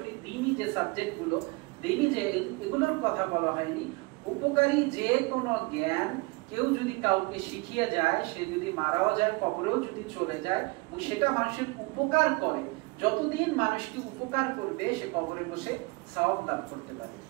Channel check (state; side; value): quieter; left; 25.7 dB